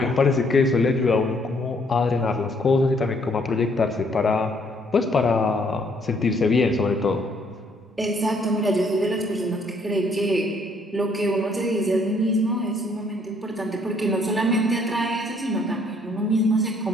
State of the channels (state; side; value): normal; both; correlation 0.66